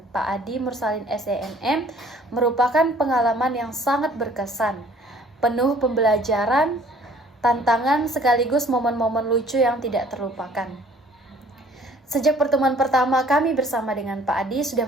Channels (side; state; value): both; normal; correlation 0.55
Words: Pak Adi Mursalin SEMM merupakan pengalaman yang sangat berkesan, penuh pembelajaran, tantangan sekaligus momen-momen lucu yang tidak terlupakan. Sejak pertemuan pertama kami bersama dengan Pak Adi sudah